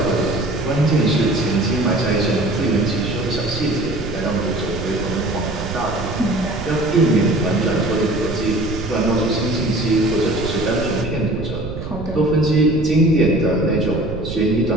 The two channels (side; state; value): right; noise; rumble, 8 dB below the sound